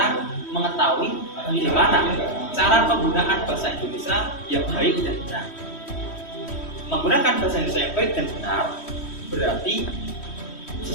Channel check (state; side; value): late; right; 3.1 ms